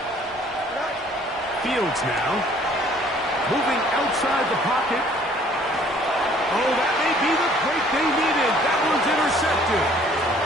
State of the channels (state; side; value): normal; both; correlation 0.57